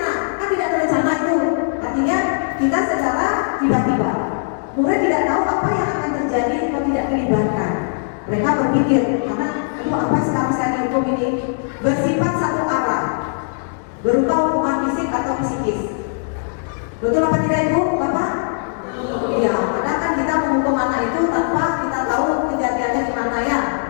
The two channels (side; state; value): right; silent; digital silence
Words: kan tidak terencana itu. Artinya kita secara tiba-tiba. Murid tidak tahu apa yang akan terjadi kalau tidak dilibatkan. Mereka berpikir, karena aduh apa sekarang saya dihukum ini, bersifat satu arah, berupa hukuman fisik atau psikis. Betul apa tidak Ibu, Bapak? Iya, kadang kan kita menghukum anak itu tanpa kita tahu kejadiannya gimana ya.